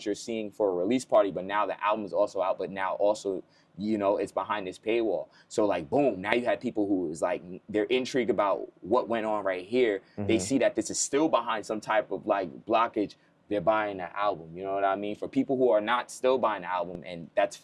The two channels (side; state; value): both; identical; correlation 1.00